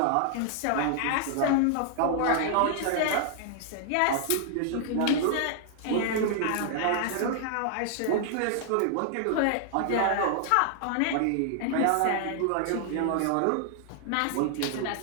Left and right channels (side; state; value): both; different; correlation -0.01